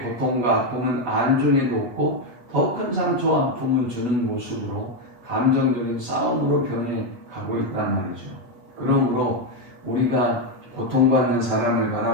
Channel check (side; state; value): left; late; 8.2 ms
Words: 고통과 아픔은 안중에도 없고 더 큰 상처와 아픔을 주는 모습으로 감정적인 싸움으로 변해가고 있단 말이죠. 그러므로 우리가 고통받는 사람을